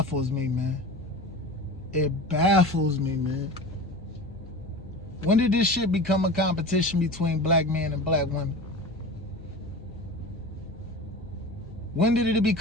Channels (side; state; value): both; normal; correlation 0.33